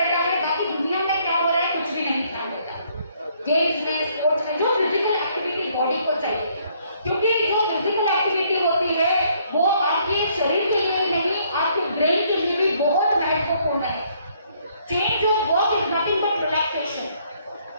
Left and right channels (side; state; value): both; inverted; correlation -0.67